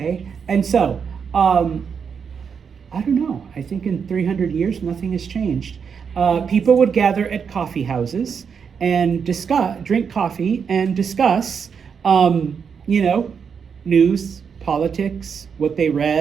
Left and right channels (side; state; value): left; quieter; 6.5 dB